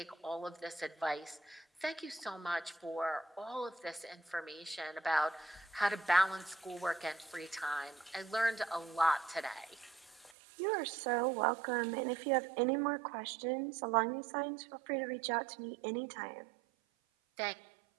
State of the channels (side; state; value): left; drops out; at 10.4 s